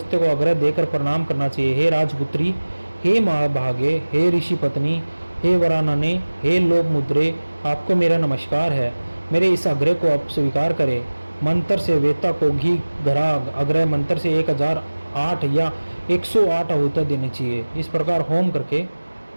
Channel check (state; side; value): inverted; both; correlation -1.00